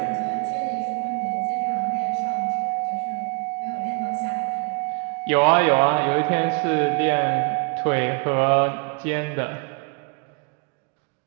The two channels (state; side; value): quieter; left; 33.6 dB